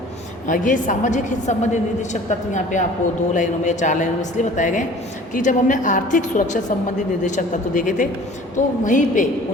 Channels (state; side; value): normal; both; correlation 0.47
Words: ये सामाजिक हित संबंधी निर्देशक तत्व यहाँ पे आपको 2 लाइनों में या 4 लाइनों में इसलिए बताए गए कि जब हमने आर्थिक सुरक्षा संबंधी निर्देशक तत्व देखे थे तो वहीं पे